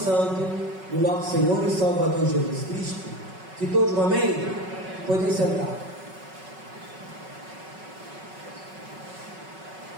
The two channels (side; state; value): left; late; 5.4 ms